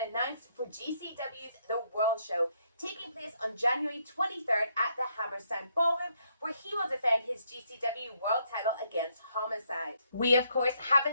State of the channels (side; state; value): both; inverted; correlation -0.73